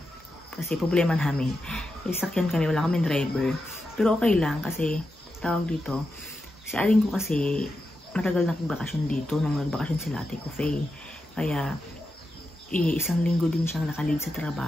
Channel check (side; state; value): both; normal; correlation 0.88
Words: Kasi problema namin. Sakyan kami, wala kaming driver. Pero okay lang kasi tawag dito, si aling ko kasi matagal na nagbakasyon dito nung nagbakasyon sila Ate Kufay. Kaya, isang linggo din siyang nakalid sa